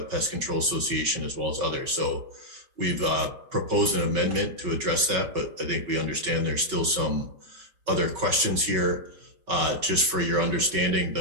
Pest Control Association as well as others. So we've proposed an amendment to address that, but I think we understand there's still some other questions here. Just for your understanding,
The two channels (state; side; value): late; left; 5.2 ms